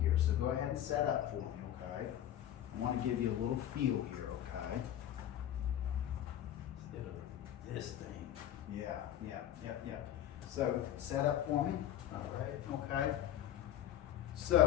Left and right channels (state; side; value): quieter; right; 11.5 dB